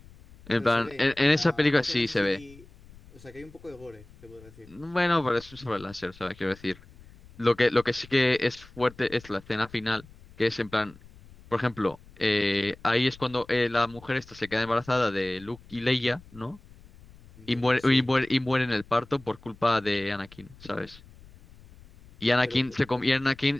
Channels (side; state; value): left; noise; rumble, 23 dB below the sound